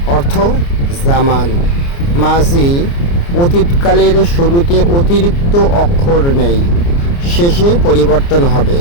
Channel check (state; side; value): late; right; 29 ms